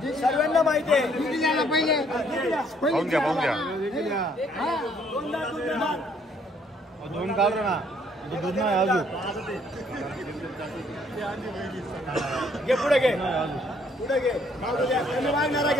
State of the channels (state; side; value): normal; both; correlation 0.65